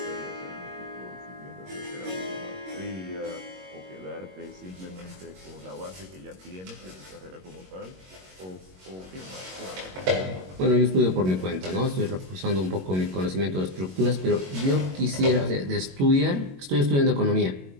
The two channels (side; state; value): left; late; 22 ms